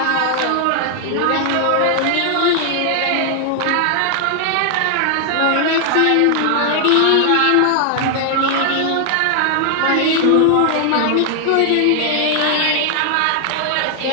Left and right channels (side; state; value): both; different; correlation 0.00